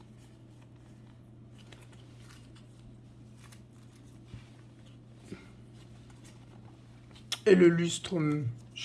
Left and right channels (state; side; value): identical; both; correlation 1.00